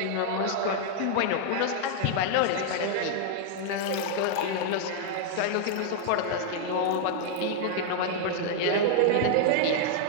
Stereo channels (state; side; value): different; both; correlation -0.01